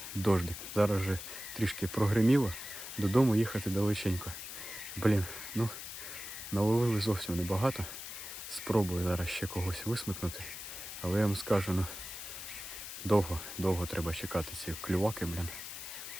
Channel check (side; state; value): left; noise; hiss, 9 dB below the sound